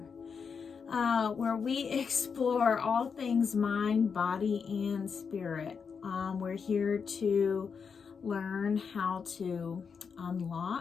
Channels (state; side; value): quieter; right; 6.0 dB